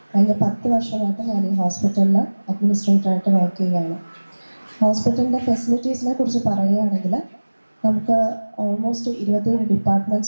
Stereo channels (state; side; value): inverted; both; correlation -1.00